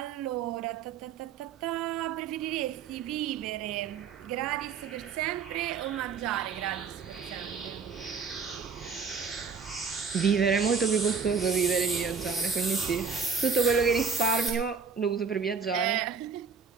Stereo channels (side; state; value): left; quieter; 5.7 dB